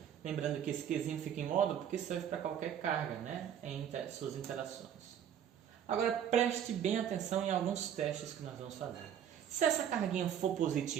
Lembrando que esse Qzinho fica em módulo porque serve para qualquer carga, né? Em suas interações. Agora preste bem atenção em alguns testes que nós vamos fazer. Se essa carguinha for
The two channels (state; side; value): quieter; left; 9.3 dB